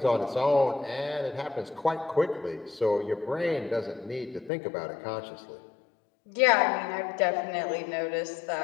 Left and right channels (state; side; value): drops out; right; at 4.5 s